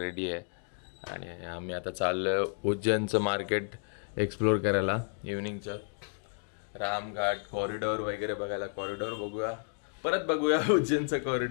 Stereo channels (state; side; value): silent; right; 57 dB below the other